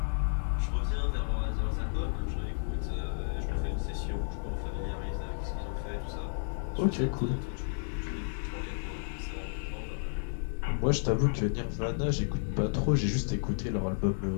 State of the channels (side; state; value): right; silent; digital silence